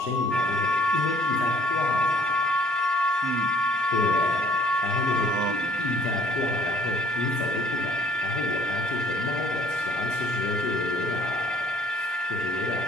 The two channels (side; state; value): both; normal; correlation 0.59